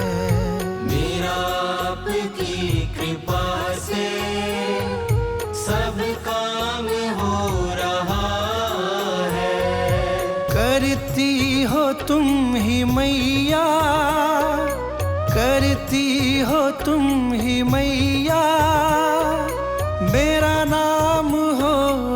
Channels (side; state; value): both; identical; correlation 1.00